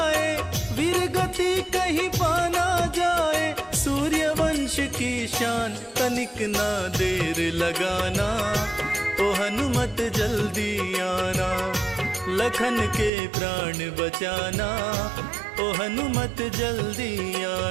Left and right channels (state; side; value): drops out; left; at 13.1 s